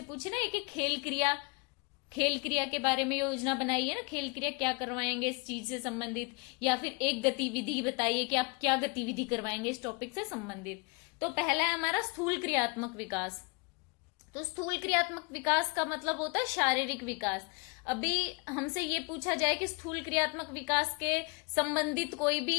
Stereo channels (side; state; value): right; quieter; 31.0 dB